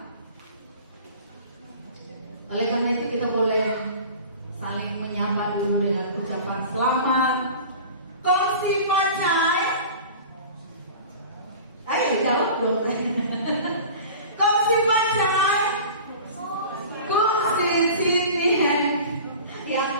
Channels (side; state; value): both; inverted; correlation -0.39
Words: Oleh karena itu kita boleh saling menyapa dulu dengan ucapan selamat. Kongsi Facai. Ayo jawab dong. Kongsi Facai. Kongsi sini. Ya,